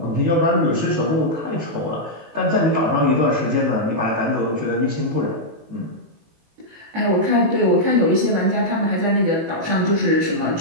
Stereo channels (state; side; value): late; left; 18 ms